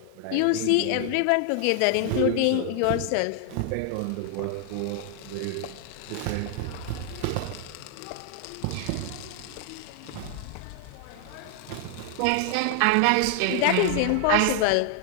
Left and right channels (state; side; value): different; both; correlation 0.00